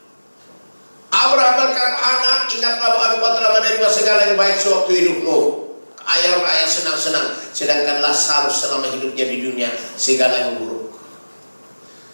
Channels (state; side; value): inverted; both; correlation -1.00